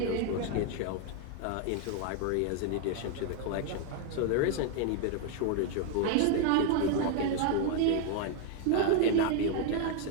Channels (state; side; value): different; both; correlation 0.00